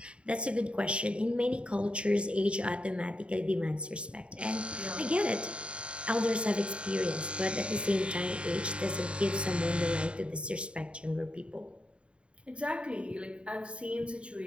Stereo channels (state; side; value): late; left; 0.058 ms